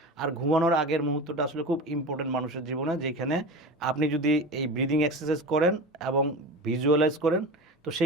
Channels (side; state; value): both; normal; correlation 0.30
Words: আর ঘুমানোর আগের মুহূর্তটা আসলে খুব ইম্পর্টেন্ট মানুষের জীবনে, যেখানে আপনি যদি এই ব্রিদিং এক্সারসাইজ করেন এবং ভিজুয়ালাইজ করেন, তো